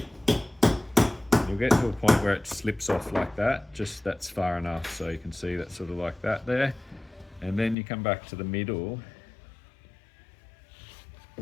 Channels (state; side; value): drops out; right; at 7.8 s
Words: You'll get to a point where it slips off like that, just that's far enough, so you can see that sort of like that there. And then you come back to the middle.